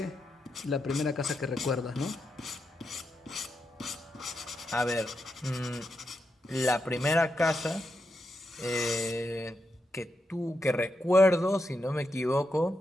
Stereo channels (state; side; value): normal; both; correlation 0.85